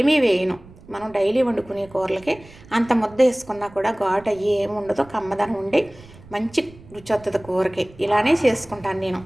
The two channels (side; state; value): right; noise; rumble, 22 dB below the sound